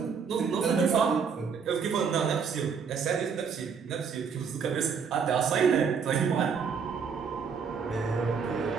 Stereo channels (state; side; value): quieter; left; 6.2 dB